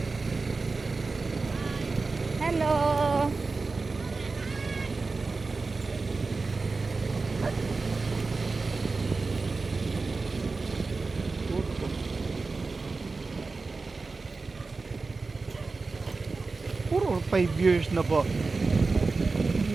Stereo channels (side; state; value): left; quieter; 4.0 dB